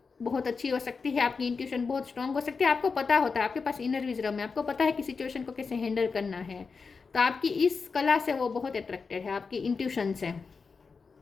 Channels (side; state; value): right; quieter; 4.9 dB